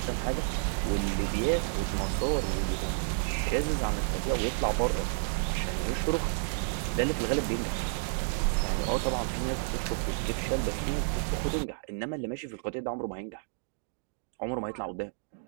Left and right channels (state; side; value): silent; left; digital silence